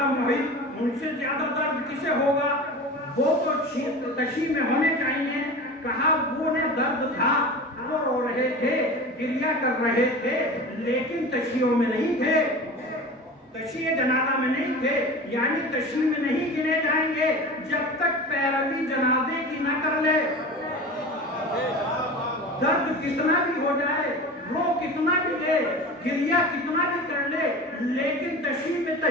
محب، ان سے زیادہ درد کسے ہوگا؟ وہ تو تشیع میں ہونے چاہیے. کہا وہ نے درد تھا، وہ رو رہے تھے، گریہ کر رہے تھے، لیکن تشیعوں میں نہیں تھے، تشیع جنازہ میں نہیں تھے. یعنی تشیع میں نہیں گنے جائیں گے جب تک پیروی جنازے کی نہ کر لے. درد کتنا بھی ہو جائے، رو کتنا بھی دے، گریہ کتنا بھی کر لے، لیکن تشیع میں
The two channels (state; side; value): normal; both; correlation 0.33